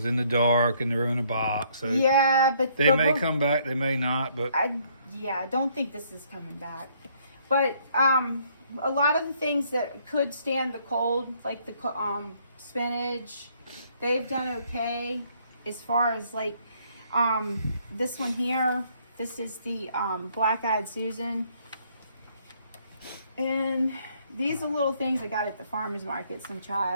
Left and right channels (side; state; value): both; inverted; correlation -0.66